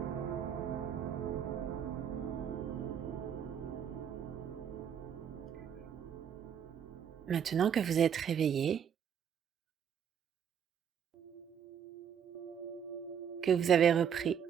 Maintenant que vous êtes réveillé, que vous avez repris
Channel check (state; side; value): quieter; left; 8.2 dB